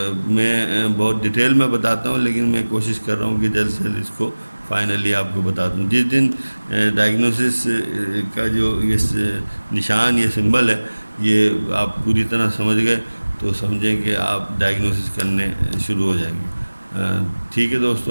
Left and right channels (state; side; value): inverted; both; correlation -1.00